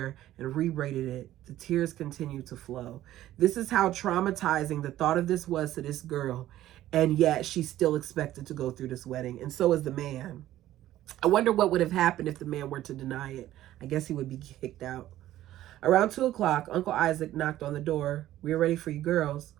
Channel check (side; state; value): left; quieter; 13.8 dB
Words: and re-braided it, the tears continued to flow. This is how traumatizing the thought of this was to this girl, and yet she still expected to go through this wedding, and so is the man. I wonder what would have happened if the man were to deny it. I guess he would be kicked out. Around 2 o'clock, Uncle Isaac knocked on the door. We are ready for you girls.